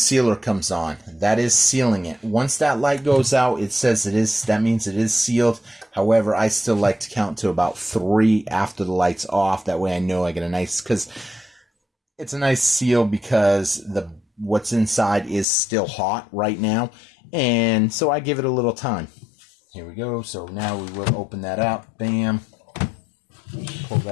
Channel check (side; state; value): right; drops out; at 15.5 s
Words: comes on. That is sealing it. Once that light goes out, it says it is, that means it is sealed. However, I still like to count to about 3 after the light's off. That way I know I get a nice, because it's a nice seal because what's inside is still hot right now. And so I give it a little time. Here we go. So now we will open that up. Bam. Pull